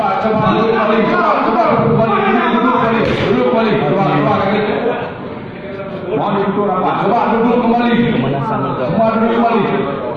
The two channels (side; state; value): both; identical; correlation 1.00